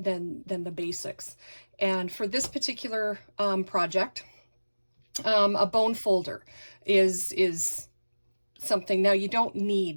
basics. And for this particular project, a bone folder is something. Now, you don't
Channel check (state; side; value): inverted; both; correlation -1.00